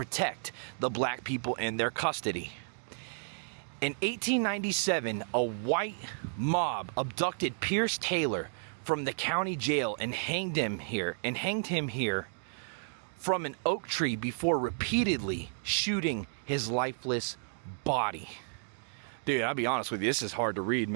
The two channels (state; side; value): silent; left; digital silence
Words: the black people in their custody. In 1897, a white mob abducted Pierce Taylor from the county jail and hanged him here from an oak tree before repeatedly shooting his lifeless body. Dude, I'll be honest with you, this is hard to read,